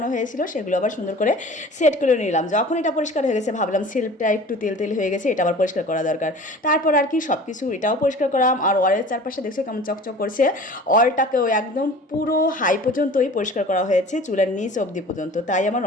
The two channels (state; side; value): normal; both; correlation 0.43